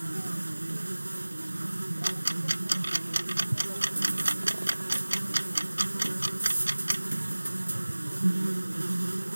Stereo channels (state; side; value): inverted; both; correlation -1.00